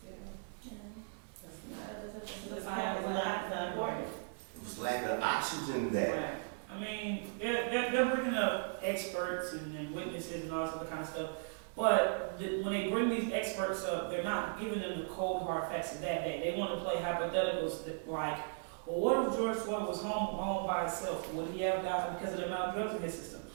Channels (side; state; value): left; silent; digital silence